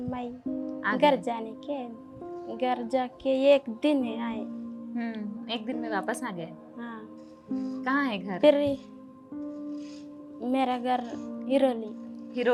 आ घर गए। जाने के घर जाके एक दिन में आए। एक दिन में वापस आ गए। हाँ कहाँ है घर? फिर मेरा घर हिरोली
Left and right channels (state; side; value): identical; both; correlation 1.00